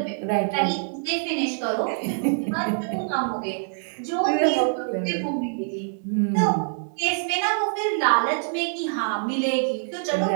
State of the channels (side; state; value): left; silent; digital silence